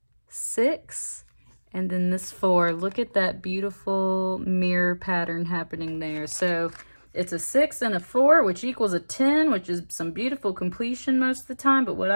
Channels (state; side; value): inverted; both; correlation -1.00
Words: 6 and then this 4. Look at that beautiful mirror pattern happening there. So it's a 6 and a 4, which equals a 10, which is some beautiful completion most of the time. But what